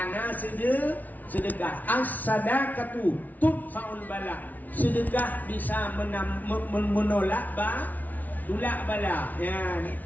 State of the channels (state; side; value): late; right; 0.078 ms